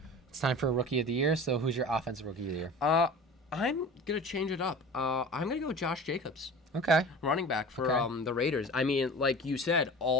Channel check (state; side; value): normal; both; correlation 0.37